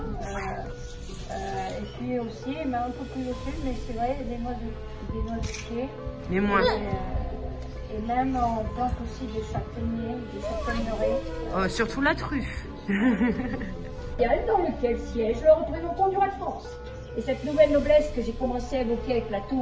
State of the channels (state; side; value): identical; both; correlation 1.00